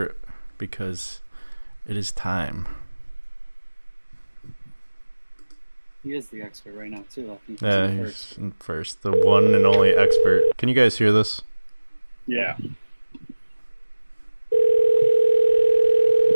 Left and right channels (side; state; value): both; inverted; correlation -1.00